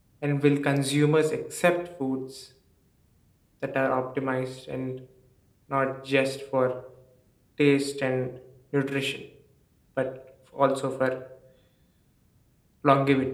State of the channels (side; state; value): both; identical; correlation 1.00